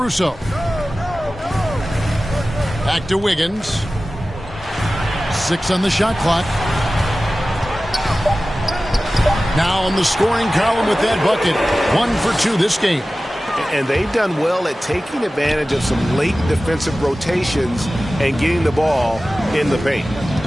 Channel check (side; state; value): both; normal; correlation 0.96